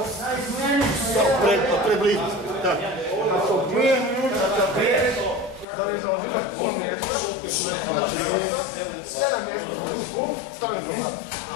Preblizu. Tak. Ako 2 minuta prije, Da li zaozimaš pol mjesta? Znači, 7 mjesta. Stavim koji da.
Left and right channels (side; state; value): right; drops out; at 5.7 s